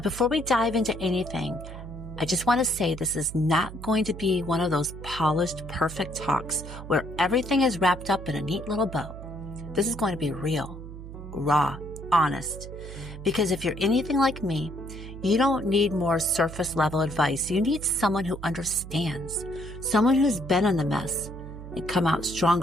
before we dive into anything, I just want to say this is not going to be one of those polished, perfect talks where everything is wrapped up in a neat little bow. This is going to be real, raw, honest. Because if you're anything like me, you don't need more surface level advice. You need someone who understands, someone who's been in the mess and come out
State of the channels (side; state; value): right; noise; hum, 12 dB below the sound